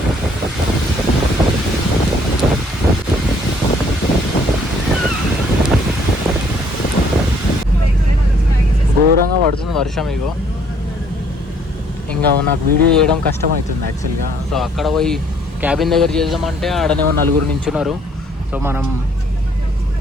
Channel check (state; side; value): normal; both; correlation 0.63